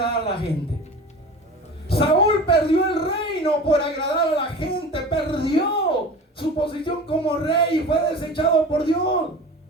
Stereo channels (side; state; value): both; normal; correlation 0.36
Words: a la gente? Saúl perdió el reino por agradar a la gente. Perdió su posición como rey y fue desechado por Dios.